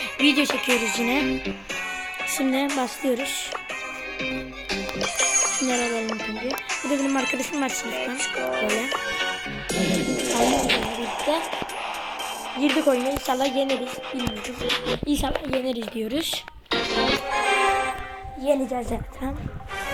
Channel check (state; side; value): identical; both; correlation 1.00